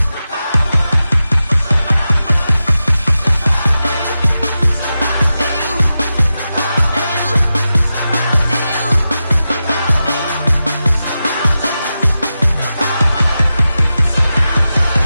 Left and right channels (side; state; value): both; inverted; correlation -0.92